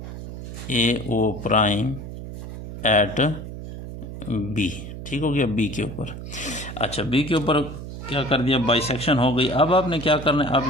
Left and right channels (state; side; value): noise; right; hum, 10 dB below the sound